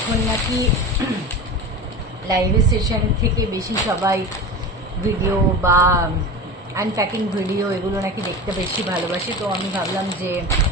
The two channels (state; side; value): normal; both; correlation 0.29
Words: নাকি লাইভ সেশন থেকে বেশি সবাই ভিডিও বা আনপ্যাকিং ভিডিও এগুলো নাকি দেখতে বেশি ভালোবাসে। তো আমি ভাবলাম যে